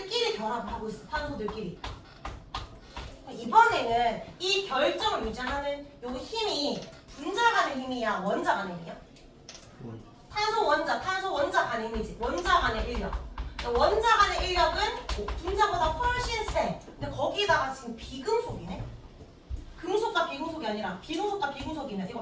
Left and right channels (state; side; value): identical; both; correlation 1.00